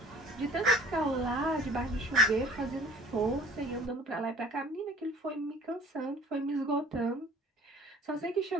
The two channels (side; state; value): both; normal; correlation 0.50